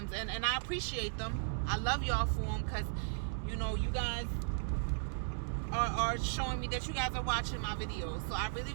and I appreciate them. I love y'all for them, because, you know, you guys are showing me that you guys are watching my videos. So I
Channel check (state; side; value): silent; left; digital silence